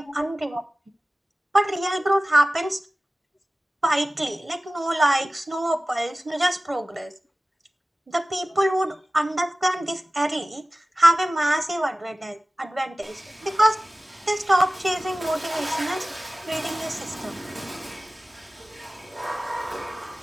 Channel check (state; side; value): normal; both; correlation 0.97